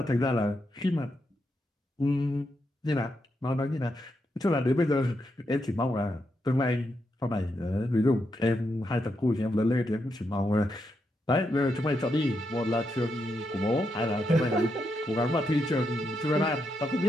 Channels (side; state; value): both; normal; correlation 0.82